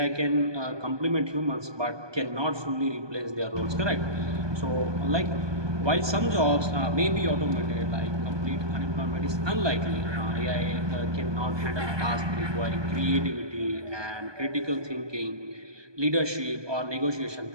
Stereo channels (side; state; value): left; late; 1.2 ms